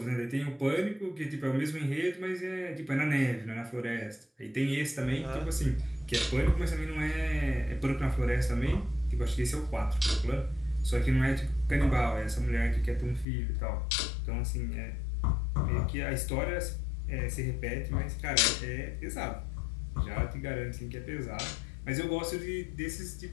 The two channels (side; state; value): right; drops out; at 13.2 s